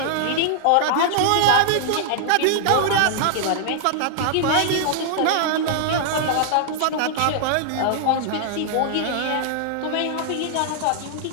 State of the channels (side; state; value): both; different; correlation -0.01